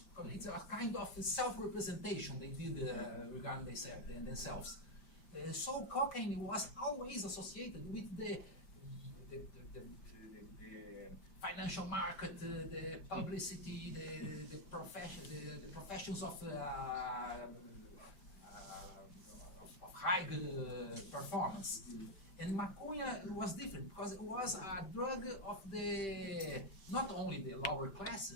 It's a kind of self-representation they did regarding themselves. So cocaine was always associated with the financial market, the publicity, the professions of high performance. And maconha was different because it was a drug of not only the lower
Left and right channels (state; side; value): late; right; 5.1 ms